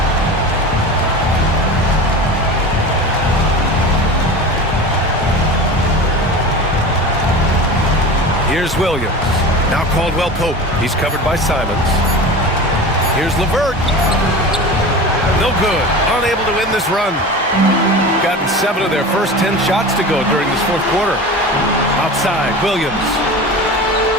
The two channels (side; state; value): both; normal; correlation 0.32